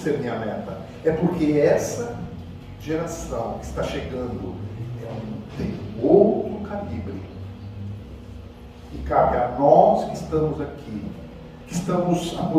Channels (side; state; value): both; identical; correlation 1.00